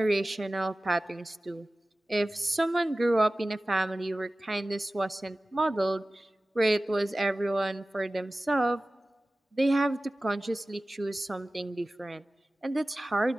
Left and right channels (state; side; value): normal; both; correlation 0.97